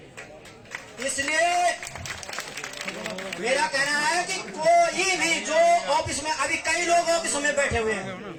इसलिए मेरा कहना है कि कोई भी जो ऑफिस में, अभी कई लोग ऑफिस में बैठे हुए हैं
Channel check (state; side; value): identical; both; correlation 1.00